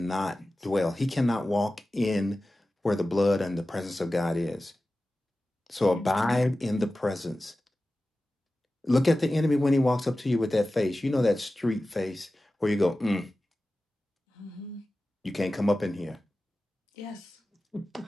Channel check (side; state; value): both; normal; correlation 0.95